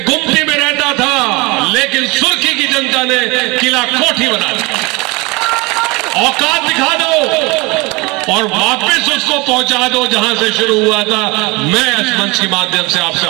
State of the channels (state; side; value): quieter; left; 25.0 dB